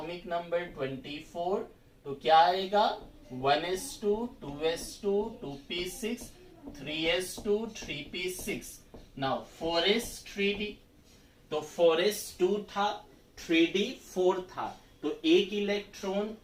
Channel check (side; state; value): both; identical; correlation 1.00